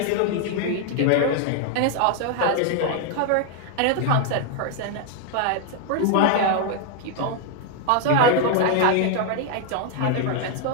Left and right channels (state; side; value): different; both; correlation 0.00